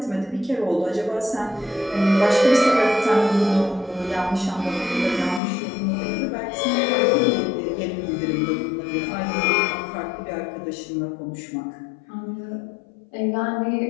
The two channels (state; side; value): drops out; right; at 5.4 s